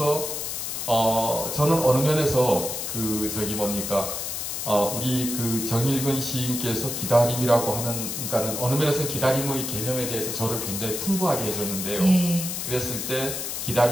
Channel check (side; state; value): left; noise; hiss, 4 dB below the sound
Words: 저는 어느 면에서 우리 그 정일근 시인께서 기다림이라고 하는 그러니까는 어느 면에서 기다림의 개념에 대해서 저를 굉장히 풍부하게 해줬는데요. 예. 그랬을 때